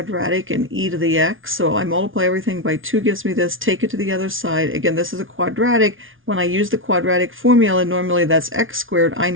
in e to the x. So I multiply everything by 2 gives me this. Take it to the other side. Again, this is a quadratic. When I use the quadratic formula, normally that's x squared. I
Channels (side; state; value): left; late; 0.58 ms